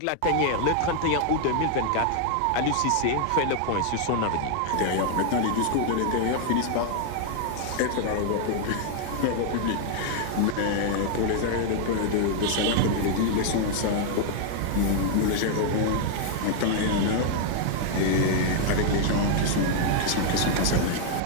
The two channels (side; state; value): both; different; correlation 0.00